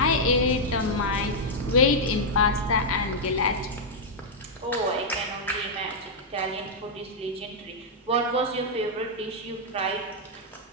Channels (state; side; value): normal; both; correlation -0.05